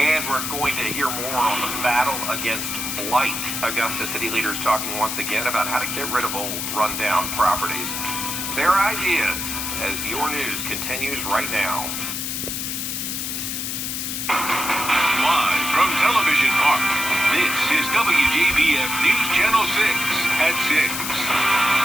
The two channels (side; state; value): left; noise; hiss, 3 dB below the sound